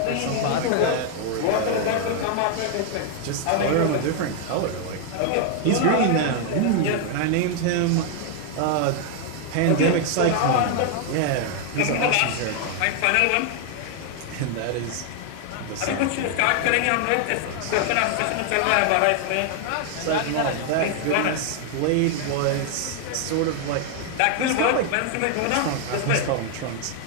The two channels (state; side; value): different; both; correlation 0.00